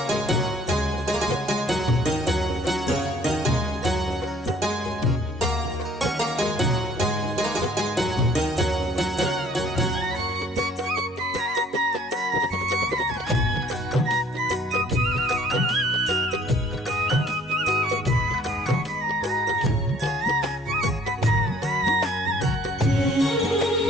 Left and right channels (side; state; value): both; normal; correlation 0.58